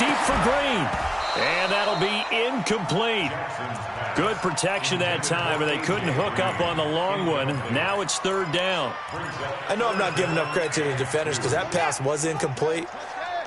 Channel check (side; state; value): both; identical; correlation 1.00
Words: for Green. And that'll be incomplete. Good protection that time, and they couldn't hook up on the long one. Now it's third down. I know I'm not giving enough credit to the defenders because that pass was incomplete.